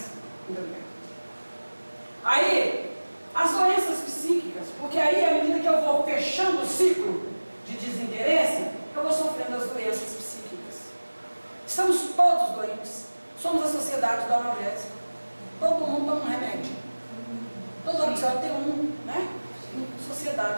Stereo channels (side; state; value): both; inverted; correlation -1.00